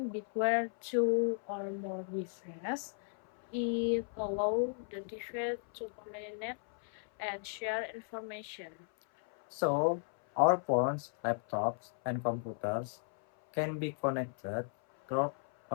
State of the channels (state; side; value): silent; right; 54 dB below the other